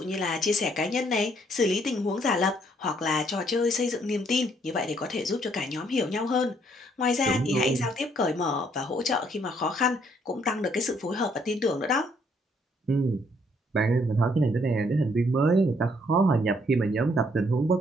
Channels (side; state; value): both; normal; correlation 0.68